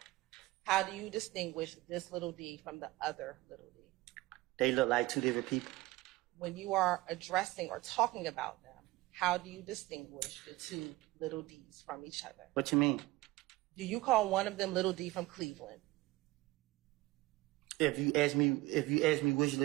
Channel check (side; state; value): left; quieter; 19.3 dB